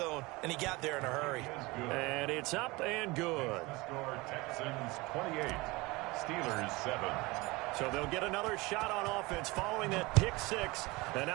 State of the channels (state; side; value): quieter; left; 23.0 dB